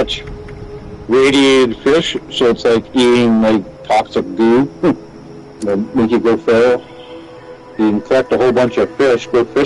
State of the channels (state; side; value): identical; both; correlation 1.00